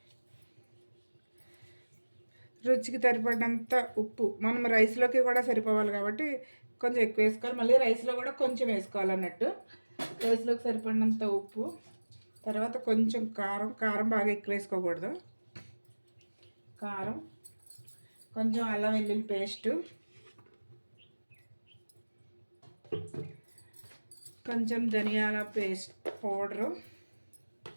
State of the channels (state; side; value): inverted; both; correlation -1.00